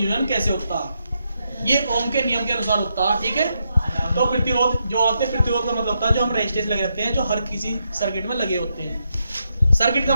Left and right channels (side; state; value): both; inverted; correlation -0.82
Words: कैसे होता है। ये ओम के नियम के अनुसार होता है, ठीक है। तो प्रतिरोध जो होते हैं, प्रतिरोध का मतलब होता है जो हम रेजिस्टेंस लगे रहते हैं, जो हर किसी सर्किट में लगे होते हैं। सर्किट का